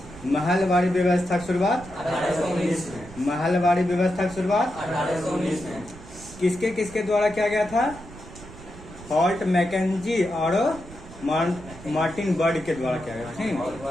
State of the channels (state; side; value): noise; right; rumble, 17 dB below the sound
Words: महलवाड़ी व्यवस्था की शुरुआत 1819 में। महलवाड़ी व्यवस्था की शुरुआत 1819 में। किसके किसके द्वारा किया गया था? हॉल्ट मैकेंजी और मार्टिन बर्ड के द्वारा किया गया। ठीक।